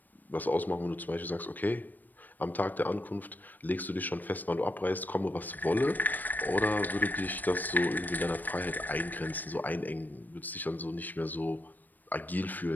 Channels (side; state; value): right; late; 0.087 ms